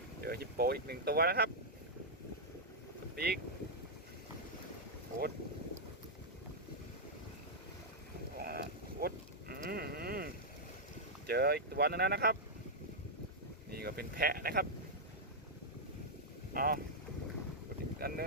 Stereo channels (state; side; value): normal; both; correlation -0.06